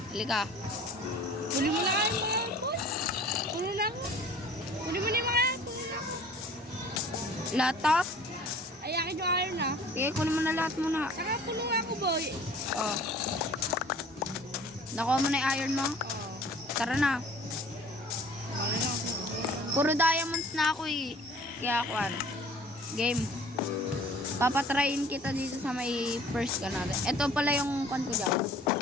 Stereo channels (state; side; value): normal; both; correlation 0.49